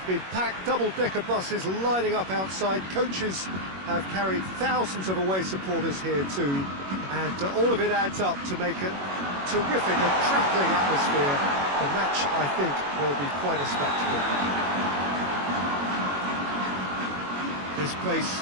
been packed, double-decker buses lining up outside. Coaches have carried thousands of away supporters here too. And all of it adds up to make a terrific, a crackling atmosphere. The match, I think, will be quite a spectacle. This place,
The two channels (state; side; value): late; left; 21 ms